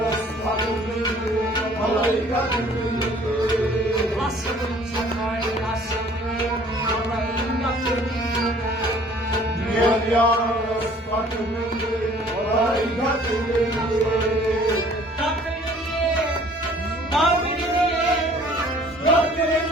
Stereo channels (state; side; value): normal; both; correlation 0.54